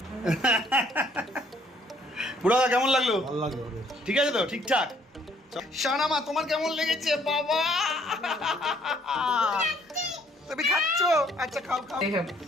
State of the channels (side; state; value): both; normal; correlation 0.63